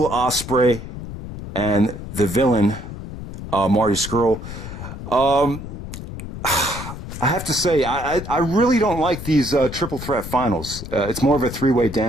Ospreay and the villain, Marty Scurll. I have to say, I really don't like these triple threat finals. It's more of a 3-way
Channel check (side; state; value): left; noise; rumble, 10 dB below the sound